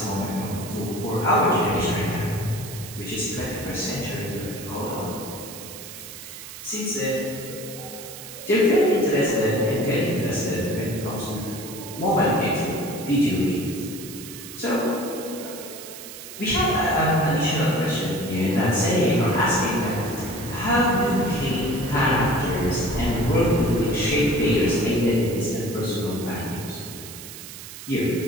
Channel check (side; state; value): right; noise; hiss, 13 dB below the sound